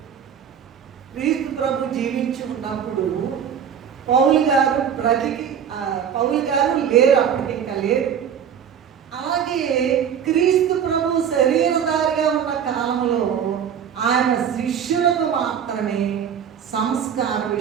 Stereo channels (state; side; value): quieter; left; 8.2 dB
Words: క్రీస్తు ప్రభు జీవించి ఉన్నప్పుడు పౌలు గారు లేరు, అప్పటికి ఇంకా లేరు. అలాగే క్రీస్తు ప్రభు శరీరధారిగా ఉన్న కాలంలో ఆయన శిష్యులకు మాత్రమే సంస్కార